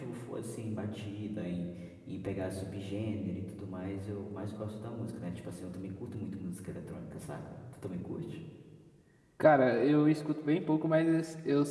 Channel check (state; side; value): identical; both; correlation 1.00